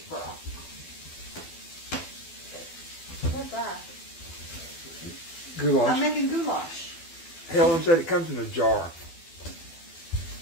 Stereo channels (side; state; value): right; late; 12 ms